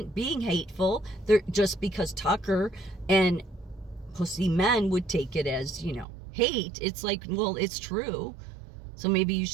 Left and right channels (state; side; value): drops out; left; at 6.1 s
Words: being hateful just because Tucker and pussy men would take it as, hate. It's like, well, it's true. So maybe you